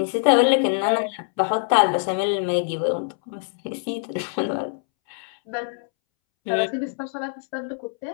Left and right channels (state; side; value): silent; right; 63 dB below the other